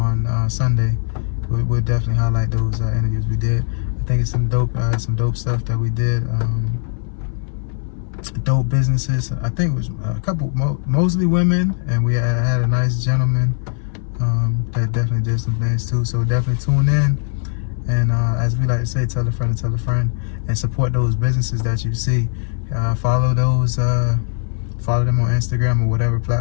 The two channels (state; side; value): silent; right; digital silence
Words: Sunday. We'll definitely highlight those interviews we did. I think it's some dope stuff that we did. Dope businesses. I think it was a couple, mostly women, and we had a nice gentleman that definitely did some things too. So definitely tune in, and as we like to say, tell a friend, and support those businesses that you see. Follow those, follow them on Instagram or whatever